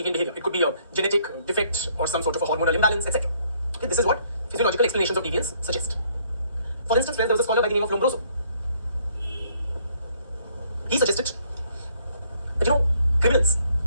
behavior. It could be a genetic defect or some sort of a hormonal imbalance, etc. Okay, this is what physiological explanations of deviance suggest. For instance, friends, there was a scholar by the name of Lombroso. He suggested that, criminals,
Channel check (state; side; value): inverted; both; correlation -0.66